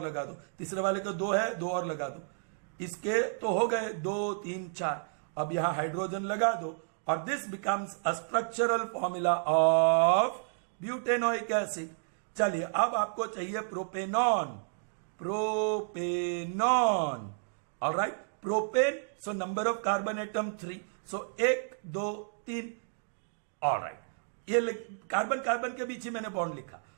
लगा दो, तीसरे वाले को 2 है 2 और लगा दो, इसके तो हो गए 2 3 4। अब यहां हाइड्रोजन लगा दो और this becomes a structural formula of butanoic acid. चलिए अब आपको चाहिए propanone, propanone. Alright, propane, so number of carbon atom 3, so 1 2 3। Alright, ये कार्बन कार्बन के बीच ही मैंने बॉन्ड लिखा।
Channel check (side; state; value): left; silent; digital silence